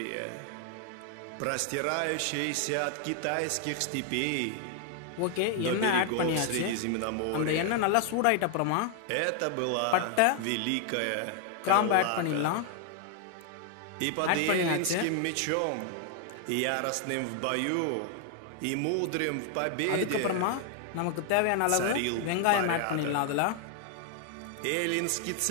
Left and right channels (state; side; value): different; both; correlation 0.00